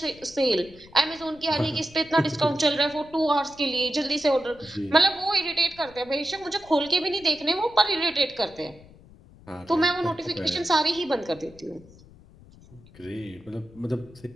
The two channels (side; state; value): left; noise; rumble, 23 dB below the sound